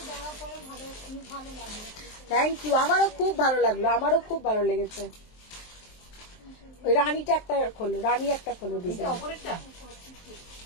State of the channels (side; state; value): right; late; 23 ms